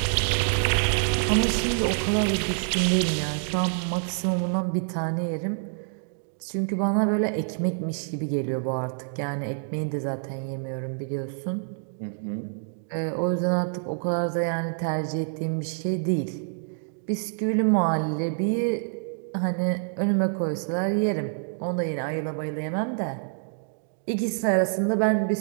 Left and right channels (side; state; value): left; silent; digital silence